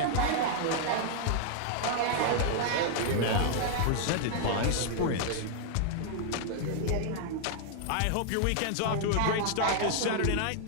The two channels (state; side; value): different; both; correlation 0.00